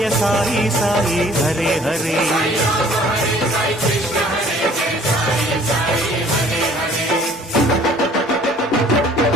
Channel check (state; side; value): normal; both; correlation 0.54